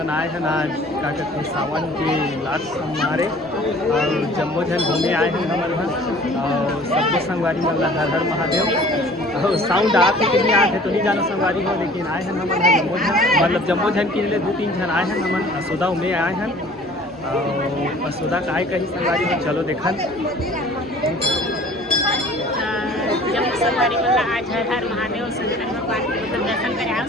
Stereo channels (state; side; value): normal; both; correlation 0.49